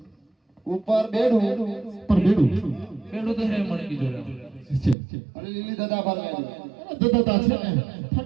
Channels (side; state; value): left; drops out; at 5.0 s